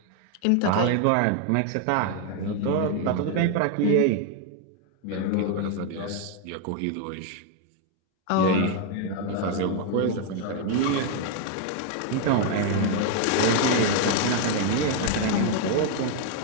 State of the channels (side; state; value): both; different; correlation 0.00